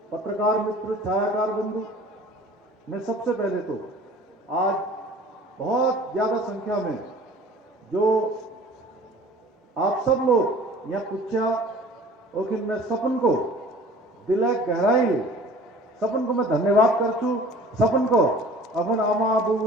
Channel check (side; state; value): both; normal; correlation 0.47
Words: पत्रकार मित्र, छायाकार बंधु, मैं सबसे पहले तो आज बहुत ज्यादा संख्या में जो आप सब लोग यहाँ पूछा और मैं सपन को दिल गहराई सपन को मैं धन्यवाद करछू। सपन को अपन आमा